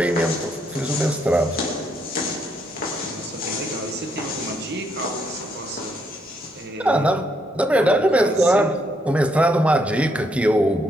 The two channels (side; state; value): both; normal; correlation 0.74